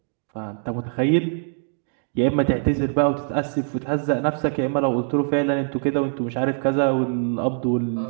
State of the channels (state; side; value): silent; left; 63 dB below the other